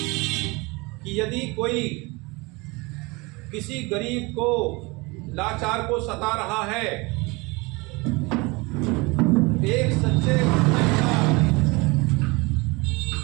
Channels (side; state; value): left; quieter; 25.6 dB